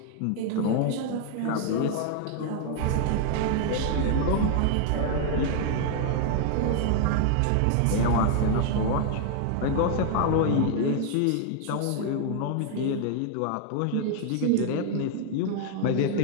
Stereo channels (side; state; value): both; different; correlation 0.00